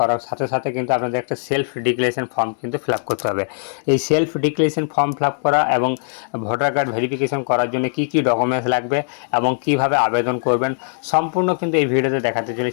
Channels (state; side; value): silent; right; digital silence